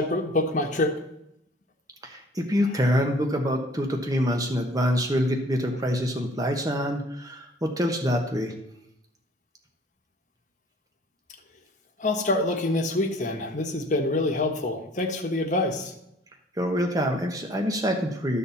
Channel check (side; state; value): both; normal; correlation 0.54